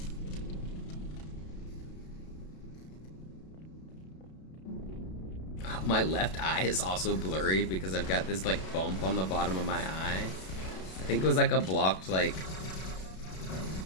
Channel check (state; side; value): late; right; 32 ms